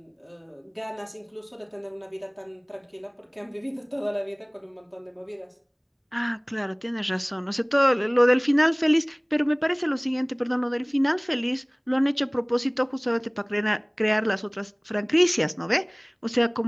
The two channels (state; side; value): identical; both; correlation 1.00